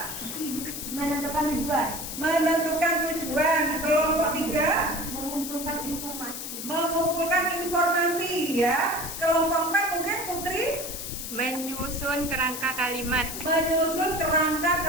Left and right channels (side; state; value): left; noise; hiss, 7 dB below the sound